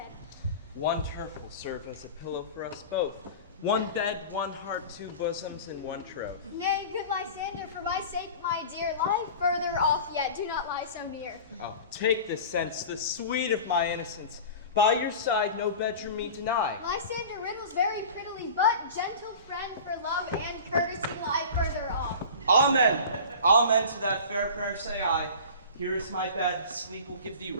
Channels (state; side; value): inverted; both; correlation -0.36